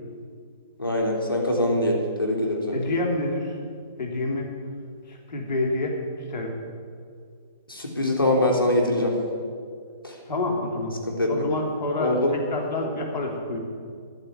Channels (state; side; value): inverted; both; correlation -0.48